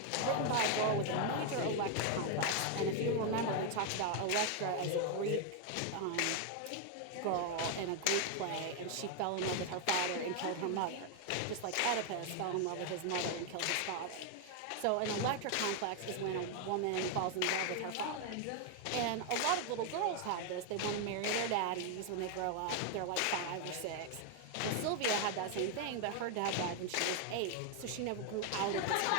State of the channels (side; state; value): both; different; correlation 0.00